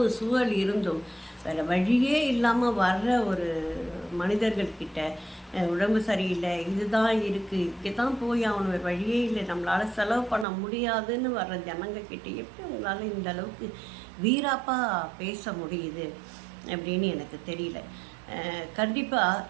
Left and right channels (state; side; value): drops out; left; at 10.5 s